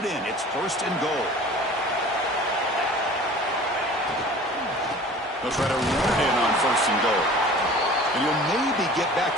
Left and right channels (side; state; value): both; normal; correlation 0.44